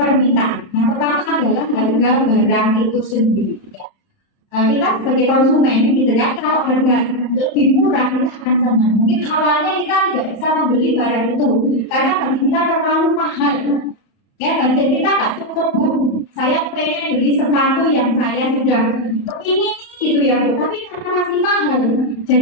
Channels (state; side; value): late; right; 31 ms